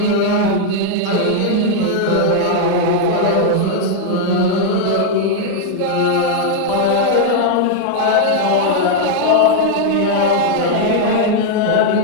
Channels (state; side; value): different; both; correlation 0.00